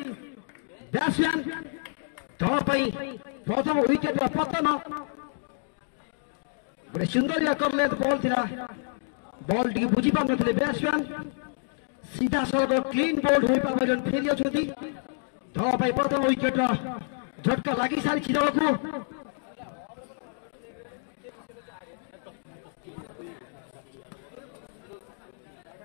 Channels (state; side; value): silent; right; digital silence